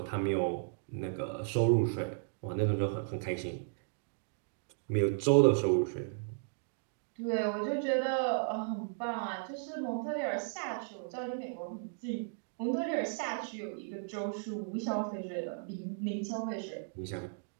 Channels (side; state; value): left; silent; digital silence